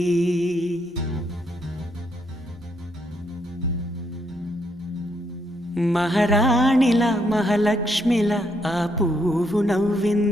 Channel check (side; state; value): both; normal; correlation 0.75